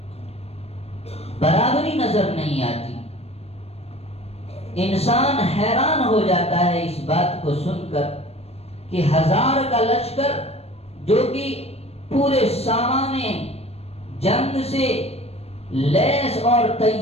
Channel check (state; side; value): late; right; 0.30 ms